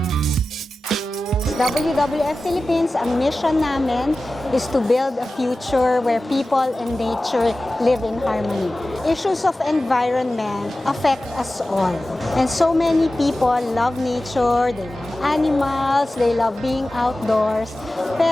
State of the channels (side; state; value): both; normal; correlation 0.95